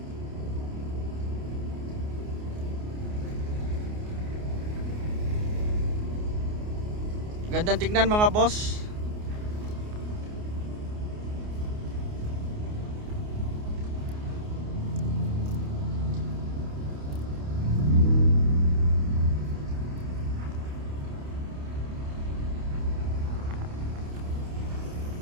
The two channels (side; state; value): left; late; 28 ms